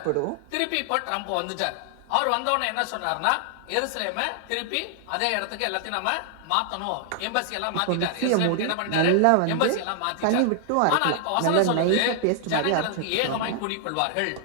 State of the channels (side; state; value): both; different; correlation 0.00